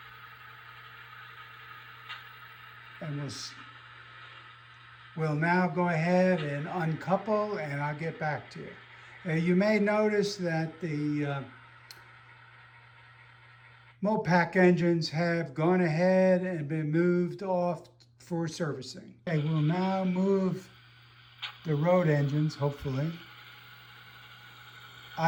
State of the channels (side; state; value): both; identical; correlation 1.00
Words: and we'll now go ahead and uncouple, and I'll get back to you. You may notice that the MoPac engines have gone ahead and been moved off for servicing. Okay, we'll now move the road engines, hopefully,